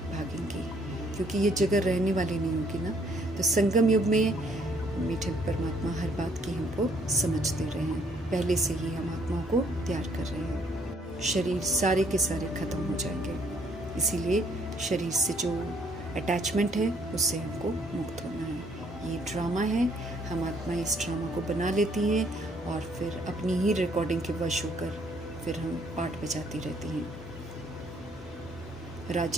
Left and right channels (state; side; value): normal; both; correlation 0.66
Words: क्योंकि ये जगह रहने वाली नहीं होगी ना। तो संगम युग में मीठे परमात्मा हर बात की हमको समझ दे रहे हैं, पहले से ही हम आत्माओं को तैयार कर रहे हैं। शरीर सारे के सारे खत्म हो जाएंगे, इसीलिए शरीर से जो अटैचमेंट है उससे हमको मुक्त होना है। ये ड्रामा है, हम आत्मा इस ड्रामा को बना लेती हैं और फिर अपनी ही रिकॉर्डिंग के वश होकर फिर हम पाठ बजाती रहती हैं।